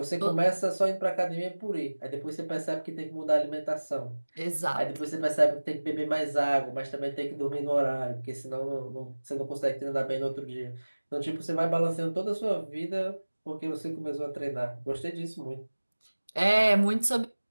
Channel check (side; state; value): both; inverted; correlation -1.00